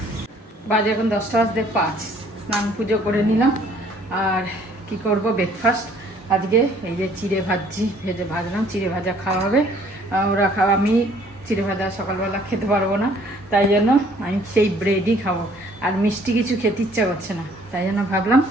বাজে এখন 10:05। স্নান পুজো করে নিলাম। আর কি করব, ব্রেকফাস্ট আজকে এই যে চিড়ে ভাজলাম। চিড়ে ভাজা খাওয়া হবে, ওরা খাওয়া। আমি চিড়ে ভাজা সকালবেলা খেতে পারবো না, তাই জন্য আমি সেই ব্রেডই খাবো। আর মিষ্টি কিছু খেতে ইচ্ছা করছে না, তাই জন্য ভাবলাম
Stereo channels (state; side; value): normal; both; correlation 0.59